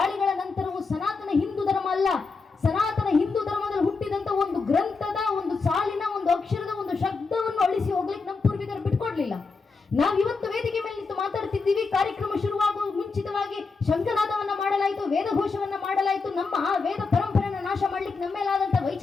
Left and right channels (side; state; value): right; quieter; 4.4 dB